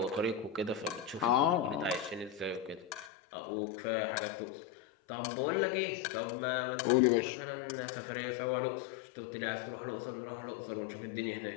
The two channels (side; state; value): right; drops out; at 3.1 s